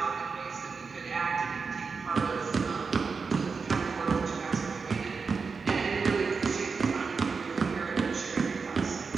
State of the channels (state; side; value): quieter; left; 5.0 dB